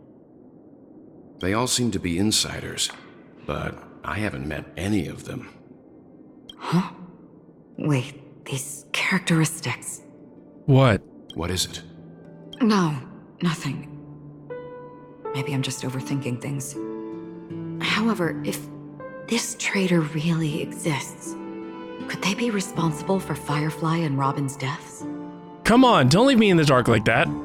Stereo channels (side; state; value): both; identical; correlation 1.00